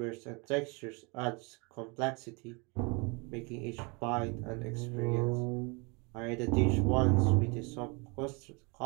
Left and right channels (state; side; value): quieter; left; 30.2 dB